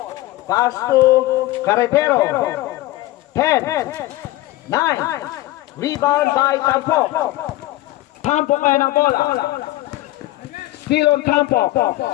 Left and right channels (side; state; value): right; quieter; 17.2 dB